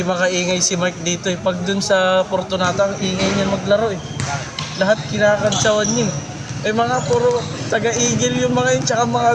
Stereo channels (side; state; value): both; identical; correlation 1.00